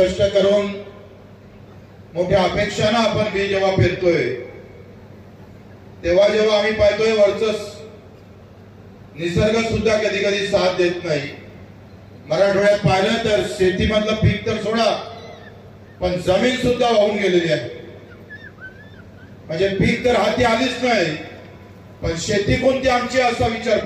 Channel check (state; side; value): identical; both; correlation 1.00